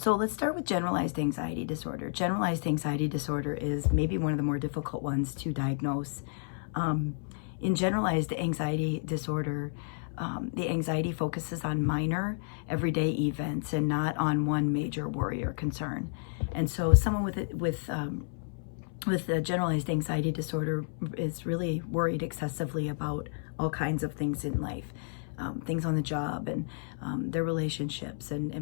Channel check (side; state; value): right; silent; 57 dB below the other